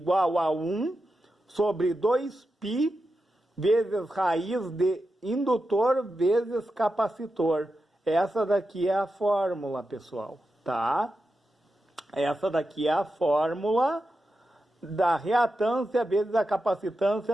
a 1 sobre 2π vezes raiz de indutor vezes capacitor. Essa daqui é a fórmula, pessoal, tá? Essa daqui é a fórmula da reatância vezes a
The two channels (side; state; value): both; normal; correlation 0.89